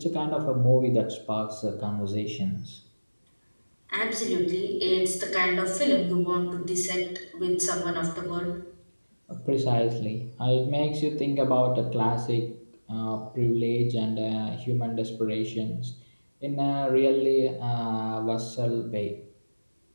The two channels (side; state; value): both; inverted; correlation -1.00